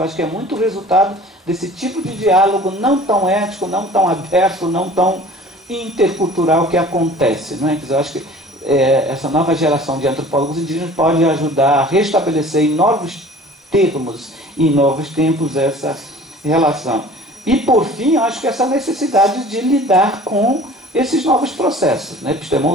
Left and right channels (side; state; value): both; normal; correlation 0.46